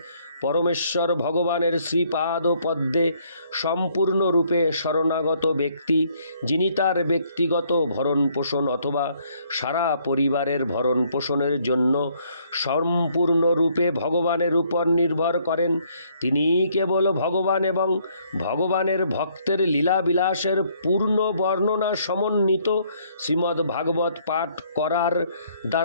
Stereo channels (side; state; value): both; inverted; correlation -0.66